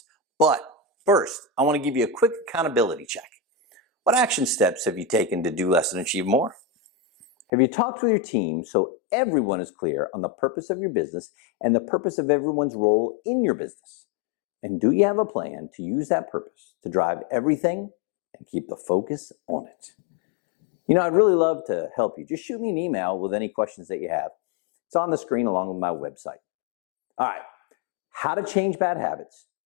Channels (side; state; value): right; drops out; at 7.5 s